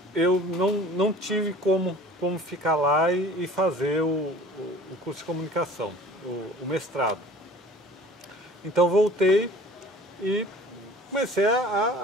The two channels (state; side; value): normal; both; correlation 0.47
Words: eu não tive como ficar lá e fazer o curso de comunicação, o mestrado. Então voltei e comecei